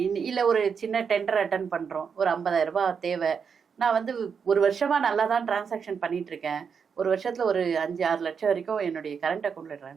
இல்லை ஒரு சின்ன டெண்டர் அட்டன் பண்ணுறோம், ஒரு 50,000 ரூபாய் தேவை, நான் வந்து ஒரு வருஷமா நல்லா தான் டிரான்சாக்ஷன் பண்ணிட்டு இருக்கேன், ஒரு வருஷத்துல ஒரு 5-6 லட்சம் வரைக்கும் என்னுடைய கரண்ட் அக்கௌண்ட்ல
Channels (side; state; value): left; quieter; 6.4 dB